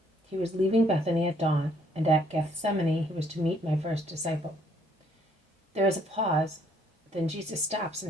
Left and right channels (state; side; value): normal; both; correlation 0.65